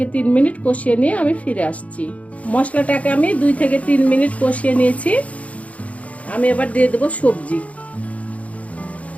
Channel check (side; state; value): right; late; 0.066 ms